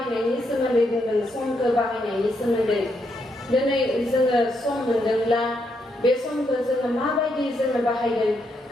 सोमोन्दै बुंदों समखौ बाहायनायनि सोमोन्दै दिनै जोङो सम मोनदोंब्ला बे समखौ जोङो माबायदि जोङो बाहायगोन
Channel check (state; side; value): normal; both; correlation 0.78